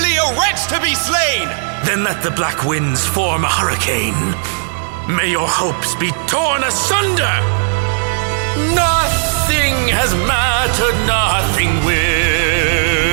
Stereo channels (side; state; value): left; silent; digital silence